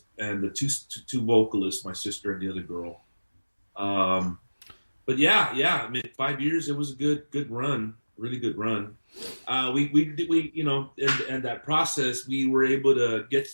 and the two vocalists, my sister and the other girl. But yeah, I mean, 5 years, it was a good run, really good run. We and that process, we were able to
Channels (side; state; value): both; inverted; correlation -1.00